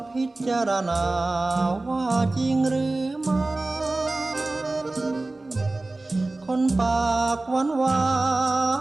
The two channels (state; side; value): quieter; left; 3.0 dB